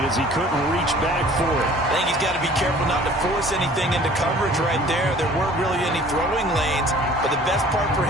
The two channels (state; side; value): normal; both; correlation 0.50